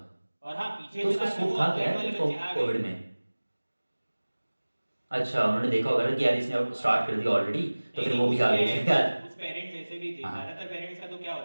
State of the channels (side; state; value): both; inverted; correlation -1.00